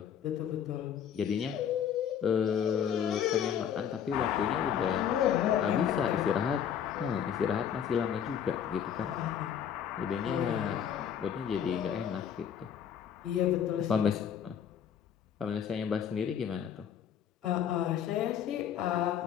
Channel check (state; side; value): quieter; right; 8.7 dB